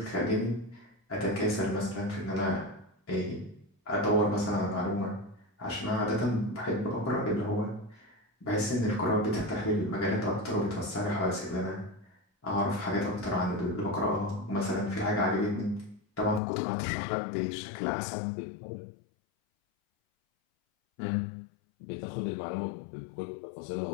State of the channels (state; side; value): drops out; right; at 16.4 s